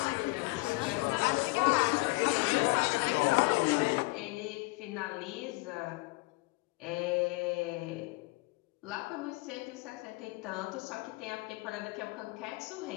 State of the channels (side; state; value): right; quieter; 23.6 dB